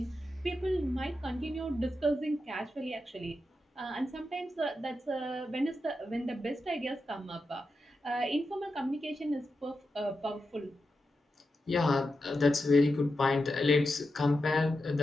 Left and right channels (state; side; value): normal; both; correlation 0.88